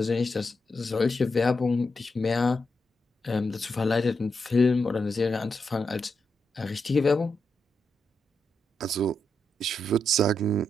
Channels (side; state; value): both; normal; correlation 0.84